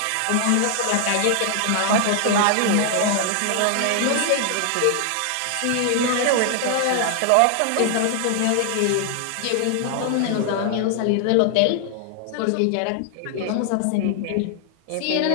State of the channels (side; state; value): both; different; correlation 0.00